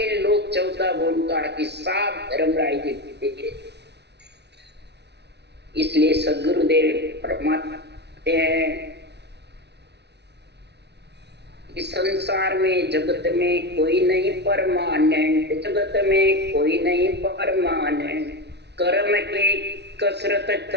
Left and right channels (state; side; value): late; left; 0.50 ms